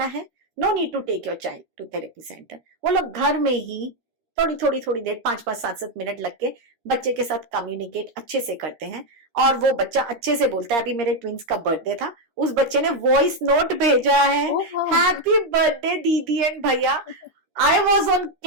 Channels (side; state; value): left; late; 13 ms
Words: है। No need to take your child to therapy centre. वो लोग घर में ही थोड़ी देर 5-5 7-7 मिनट लग के बच्चे के साथ कम्युनिकेट अच्छे से करते हैं, और वो बच्चा अच्छे से बोलता है। अभी मेरे ट्विंस का बर्थडे था, उस बच्चे ने वॉइस नोट भेजा है, हैप्पी बर्थडे दीदी एंड भैया। आई वॉज ऑन